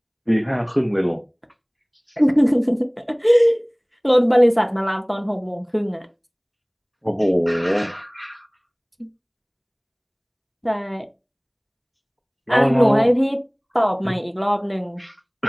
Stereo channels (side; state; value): both; identical; correlation 1.00